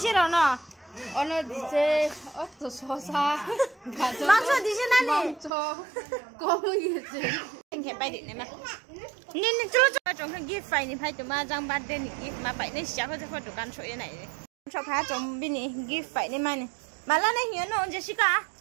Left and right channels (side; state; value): left; drops out; at 5.5 s